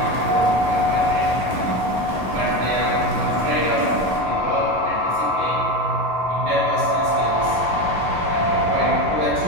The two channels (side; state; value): left; late; 11 ms